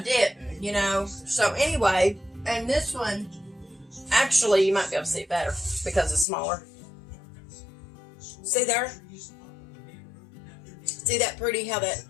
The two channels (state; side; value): drops out; right; at 6.2 s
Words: didn't, you know. So anyway, and this one, actually, you might be able to see it better because it's smaller. See there? See that pretty, how that